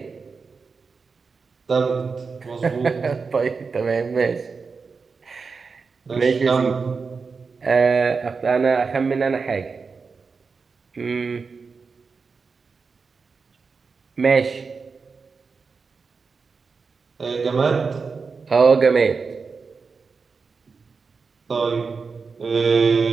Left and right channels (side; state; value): left; quieter; 4.9 dB